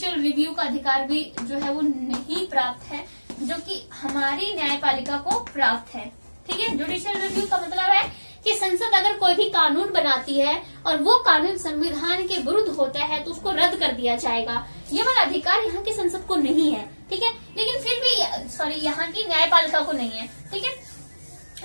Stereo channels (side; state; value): both; inverted; correlation -1.00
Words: रिव्यू का अधिकार भी जो है वो नहीं प्राप्त है, जो कि हमारी न्यायपालिका को प्राप्त है। ठीक है, जुडिशियल रिव्यू का मतलब है कि संसद अगर कोई भी कानून बनाती है और वो कानून संविधान के विरुद्ध होता है तो उसको रद्द कर दिया जाएगा। ये वाला अधिकार यहाँ की संसद को नहीं है। ठीक है, लेकिन फिर भी यहाँ की न्यायपालिका को नहीं है। ठीक है,